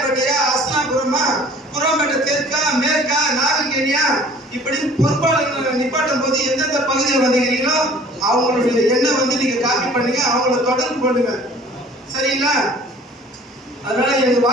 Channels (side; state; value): both; normal; correlation 0.50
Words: அஸ்லாபுரமா, குரோம்பேட்டை தெற்கா, மேற்கா, நாகல்கேணியா, இப்படி பொறுப்பாளர்கள் நிப்பாட்டும் போது எந்தெந்த பகுதியில் வந்துக்கிறீங்களோ அவங்களுடைய எண்ணெய் வந்து நீங்க காப்பி பண்ணுங்க, அவங்கள தொடர்பு பண்ணுங்க. சரிங்களா? அதனால எனக்கு